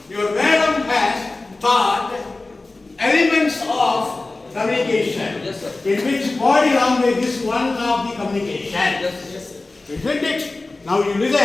your madam has taught elements of communication, yes, sir. in which body language is one of the communication. Yes. Isn't it? Now you listen.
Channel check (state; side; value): quieter; right; 3.2 dB